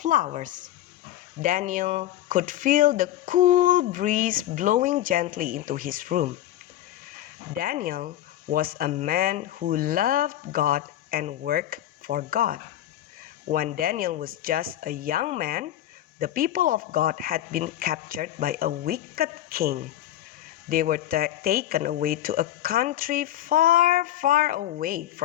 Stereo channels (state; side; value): quieter; right; 12.8 dB